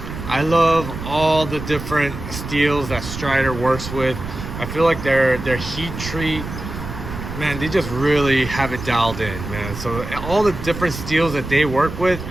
I love all the different steels that Strider works with. I feel like their heat treat, man, they just really have it dialed in, man. So all the different steels that they work with,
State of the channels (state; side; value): noise; right; rumble, 9 dB below the sound